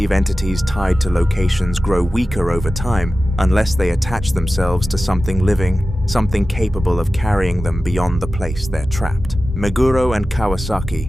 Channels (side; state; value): both; normal; correlation 0.95